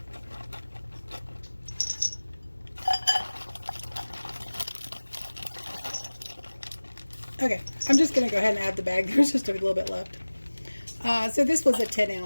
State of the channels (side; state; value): both; inverted; correlation -1.00